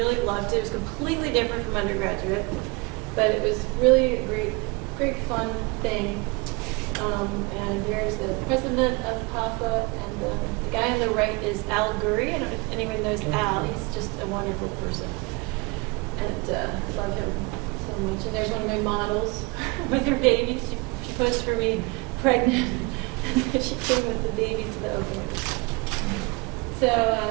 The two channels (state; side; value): quieter; left; 26.8 dB